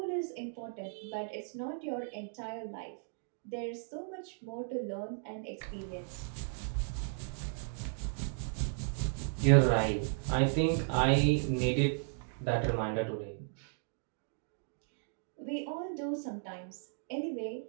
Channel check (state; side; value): silent; left; digital silence